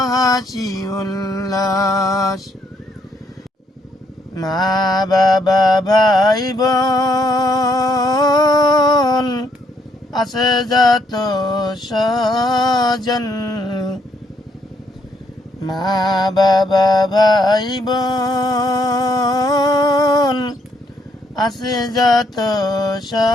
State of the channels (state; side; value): normal; both; correlation 0.72